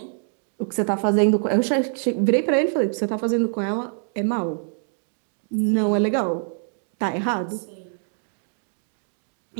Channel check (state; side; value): silent; left; digital silence